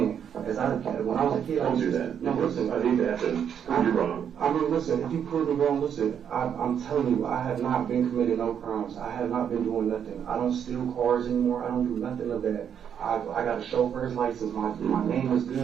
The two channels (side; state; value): left; quieter; 8.4 dB